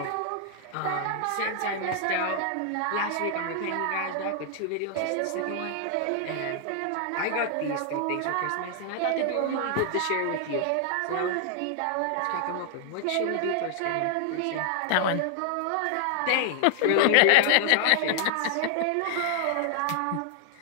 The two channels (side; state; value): both; different; correlation 0.00